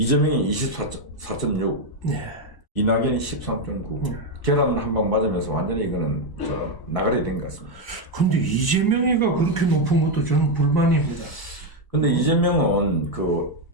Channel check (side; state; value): right; late; 1.0 ms